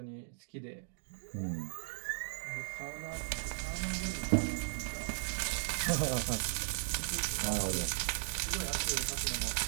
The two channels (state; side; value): silent; left; digital silence